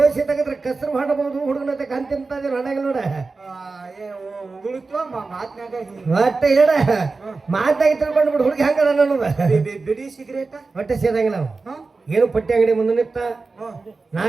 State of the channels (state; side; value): quieter; left; 4.0 dB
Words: ತೆಗದ್ರೆ ಕಸರು ಮಾಡಬಹುದು. ಹುಡುಗನ ಕಂತಿಂತ ಹಣಾಗಿಲ್ಲ ನೋಡ. ಒಟ್ಟ ಹೇಳ ಮಾತಾಗಿ ತಿಳ್ಕೊಂಡು ಬಿಡು. ಹುಡುಗಿ ಹಂಗದ ಅನ್ನೋದ ಬಿಡಿ ಸಿಗರೇಟ ಹೊಟ್ಟೆ ಸೇದಂಗಿಲ್ಲ. ನಾವು ಏನು ಪಟ್ಟಿ ಅಂಗಡಿ ಮುಂದೆ ನಿಂತ